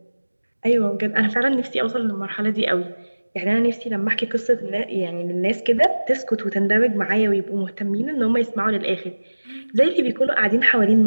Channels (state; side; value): inverted; both; correlation -1.00